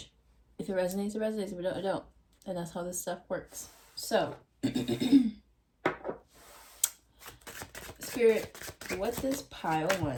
If it resonates, it resonates. If it don't, it don't. And that's how this stuff works. So, Spirit, what does pile 1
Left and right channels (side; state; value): both; identical; correlation 1.00